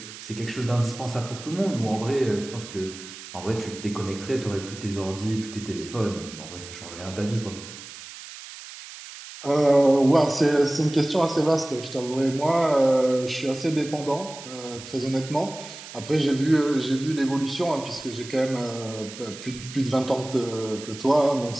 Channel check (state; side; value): noise; right; hiss, 14 dB below the sound